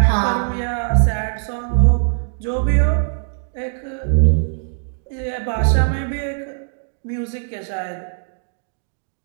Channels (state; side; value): silent; left; digital silence